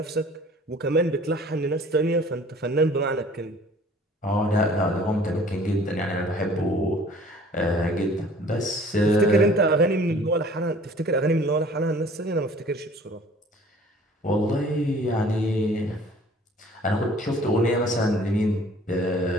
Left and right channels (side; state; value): both; normal; correlation 0.51